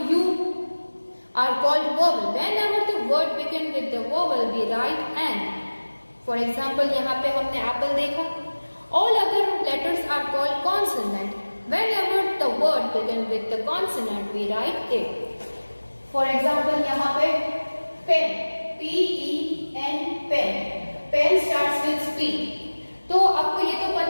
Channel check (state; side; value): inverted; both; correlation -1.00